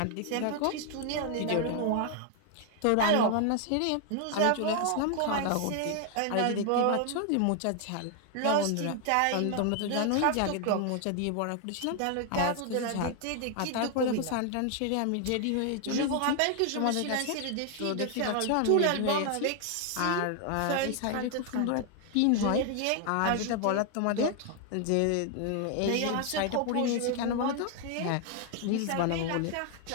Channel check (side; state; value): both; different; correlation 0.00